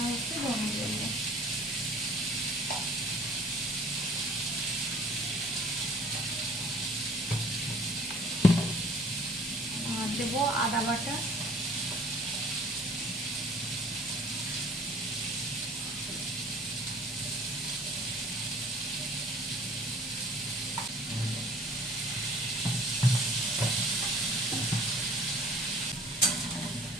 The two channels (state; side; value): normal; both; correlation 0.52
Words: একটু ধনে দেবো। আর দেবো আদা বাটা,